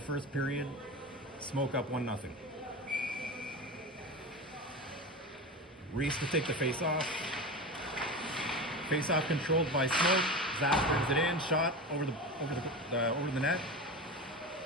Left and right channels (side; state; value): both; normal; correlation 0.26